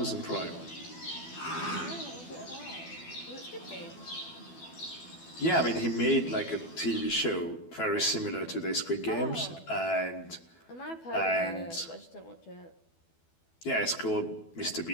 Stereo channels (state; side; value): late; right; 12 ms